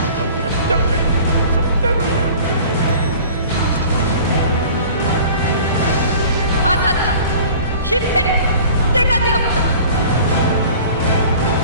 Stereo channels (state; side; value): inverted; both; correlation -0.45